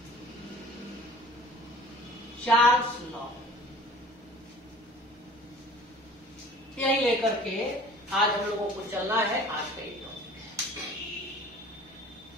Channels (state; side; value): normal; both; correlation 0.47